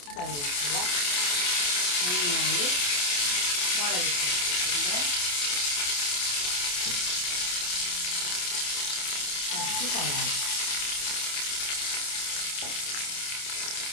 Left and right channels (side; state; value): right; late; 28 ms